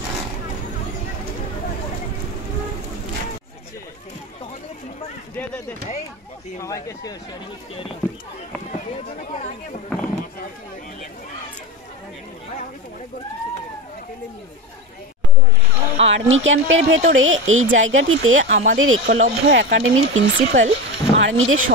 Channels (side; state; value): both; normal; correlation 0.22